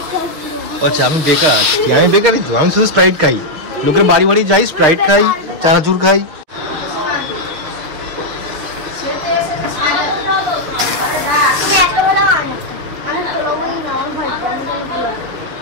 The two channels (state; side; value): late; left; 6.6 ms